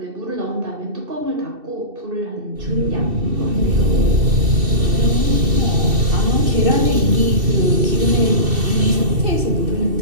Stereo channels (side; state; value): left; late; 2.7 ms